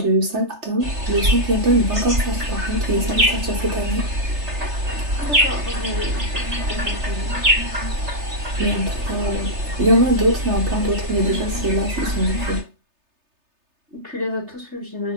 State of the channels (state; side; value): late; left; 3.3 ms